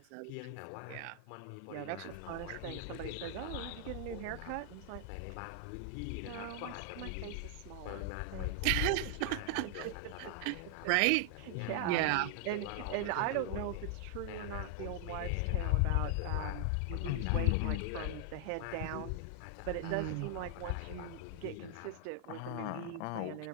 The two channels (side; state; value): both; different; correlation 0.00